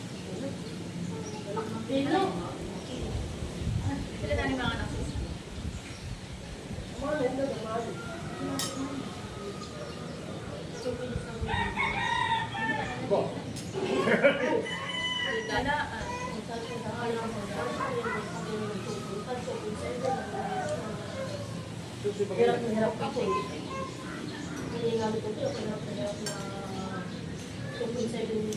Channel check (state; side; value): identical; both; correlation 1.00